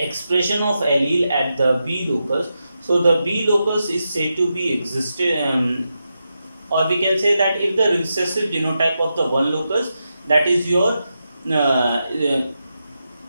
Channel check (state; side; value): inverted; both; correlation -0.88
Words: of allele at the B locus, so the B locus is said to be existed, or we can say that if the recessive genotype of the one locus, that is your